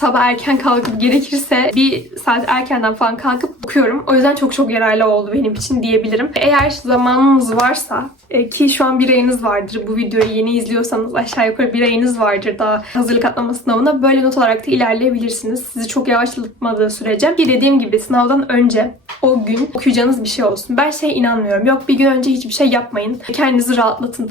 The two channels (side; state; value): both; normal; correlation 0.43